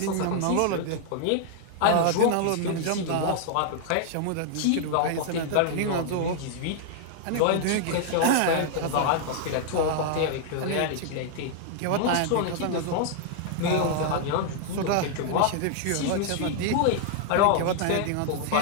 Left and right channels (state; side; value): different; both; correlation 0.00